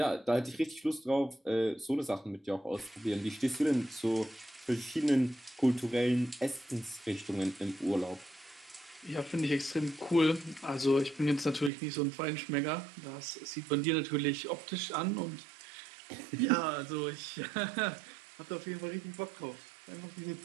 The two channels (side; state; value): left; drops out; at 11.7 s